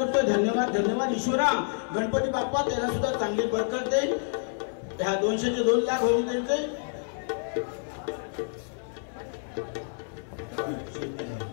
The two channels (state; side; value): silent; right; digital silence